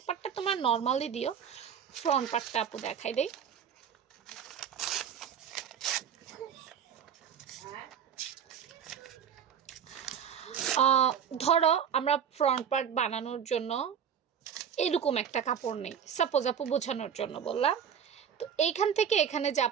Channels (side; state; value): left; quieter; 8.0 dB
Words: পার্টটা তোমার নর্মালি দিও, ফ্রন্ট পার্টটা আপু দেখাই দেই। ধরো আমরা ফ্রন্ট পার্ট বানানোর জন্য এরকম একটা কাপড় নেই, সাপোজ আপু বোঝানোর জন্য বললাম। তো এইখান থেকে এখানে যা